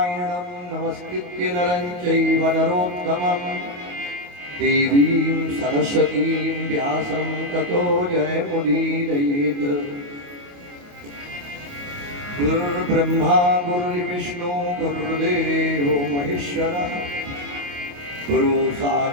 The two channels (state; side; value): late; left; 28 ms